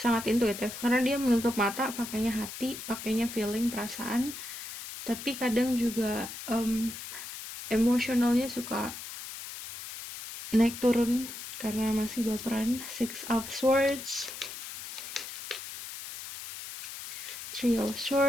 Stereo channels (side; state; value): left; noise; hiss, 10 dB below the sound